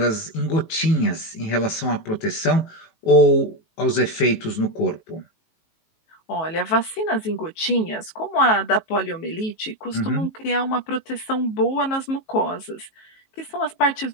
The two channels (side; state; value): right; late; 19 ms